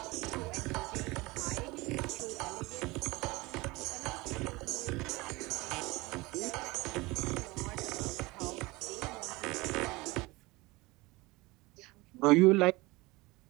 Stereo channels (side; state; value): left; quieter; 22.6 dB